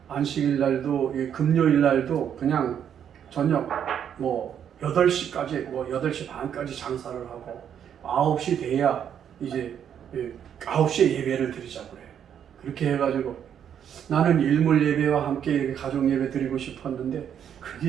안식일 날도 금요일 날도 그냥 저녁 8시까지 8시 반까지 장사를 하고 9시 돼야 이제 9시에 예배를 드리자고 그래. 그렇게 해가지고 나는 일몰 예배와 함께 이렇게 가족 예배 드리고 싶었는데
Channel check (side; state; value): left; quieter; 8.9 dB